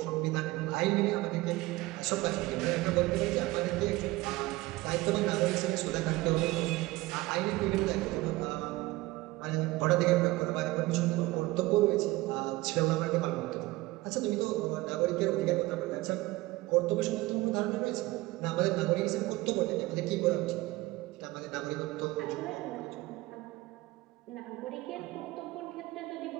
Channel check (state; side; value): quieter; left; 19.8 dB